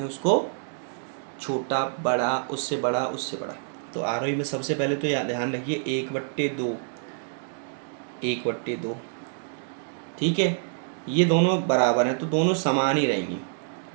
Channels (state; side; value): silent; left; digital silence